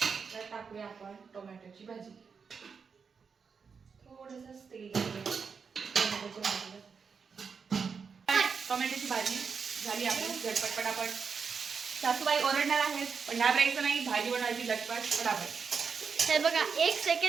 तर टाकूया आपण टोमॅटोची भाजी. थोडंसं तेल टोमॅटोच्या भाजीला. टोमॅटोची भाजी झाली आपली झटपट पटापट. सासूबाई ओरडणार आहेत, पण घाबरायचं नाही, भाजी बनवायची झटपट पटापट. हे बघा, 1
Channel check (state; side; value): quieter; left; 5.8 dB